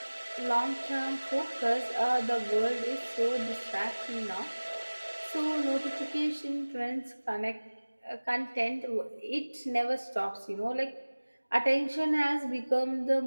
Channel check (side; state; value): both; inverted; correlation -1.00